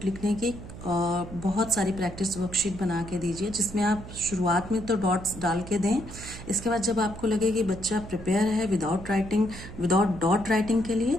लिखने की बहुत सारी practice worksheet बना के दीजिए, जिसमें आप शुरुआत में तो डॉट्स डाल के दें। इसके बाद जब आपको लगे कि बच्चा प्रिपेयर है विदाउट डॉट राइटिंग के लिए,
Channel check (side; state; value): right; noise; hum, 13 dB below the sound